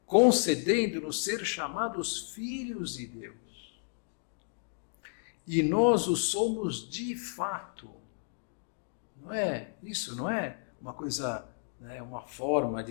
concedendo-nos ser chamados filhos de Deus. E nós o somos de fato. Não é isso, não é uma coisa, né, uma forma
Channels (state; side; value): silent; right; digital silence